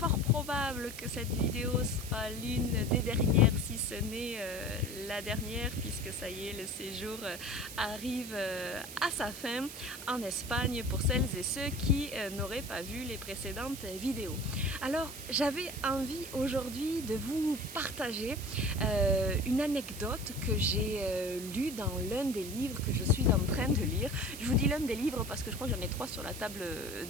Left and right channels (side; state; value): right; noise; hiss, 11 dB below the sound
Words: probable que cette vidéo soit l'une des dernières, si ce n'est la dernière, puisque ça y est, le séjour arrive à sa fin en Espagne pour celles et ceux qui n'auraient pas vu les précédentes vidéos. Alors j'avais envie aujourd'hui de vous partager une anecdote que j'ai lue dans l'un des livres que je suis en train de lire. Je vous dis l'un des livres parce que je crois que j'en ai 3 sur la table